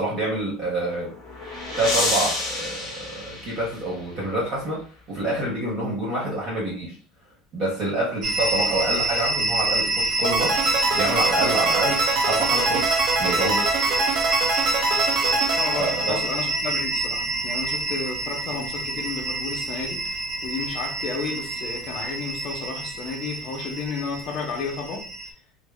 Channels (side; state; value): both; normal; correlation 0.48